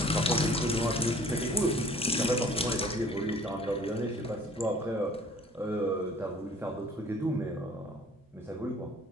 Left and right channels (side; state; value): both; normal; correlation 0.51